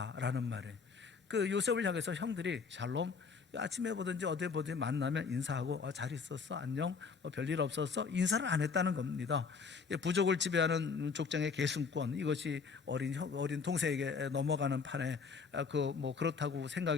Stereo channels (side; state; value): right; quieter; 5.3 dB